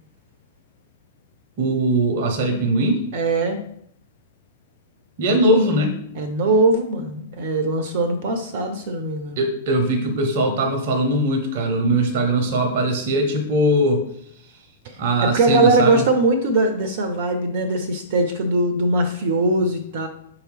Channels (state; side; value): inverted; both; correlation -0.30